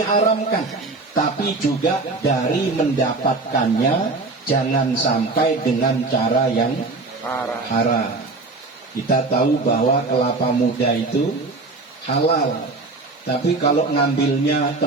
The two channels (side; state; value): left; quieter; 3.5 dB